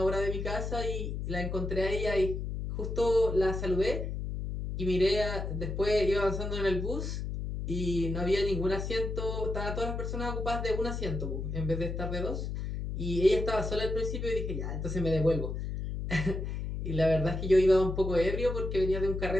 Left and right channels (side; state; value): left; noise; hum, 4 dB below the sound